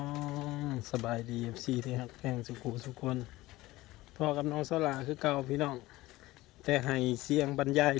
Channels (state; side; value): quieter; right; 18.3 dB